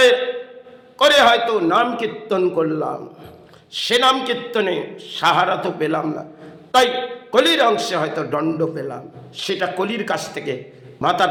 করে হয়তো নাম কীর্তন করলাম, সে নাম কীর্তনে সাহারা তো পেলাম না। তাই কলির অংশে হয়তো দণ্ড পেলাম, সেটা কলির কাছ থেকে মাথা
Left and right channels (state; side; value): identical; both; correlation 1.00